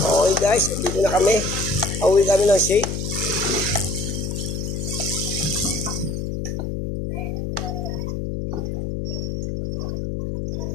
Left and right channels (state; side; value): noise; left; hum, 3 dB below the sound